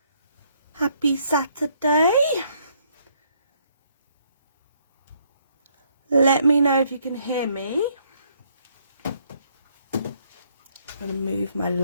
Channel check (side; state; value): both; inverted; correlation -0.68